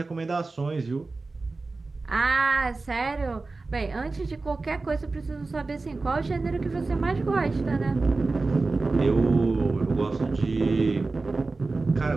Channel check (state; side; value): quieter; left; 3.6 dB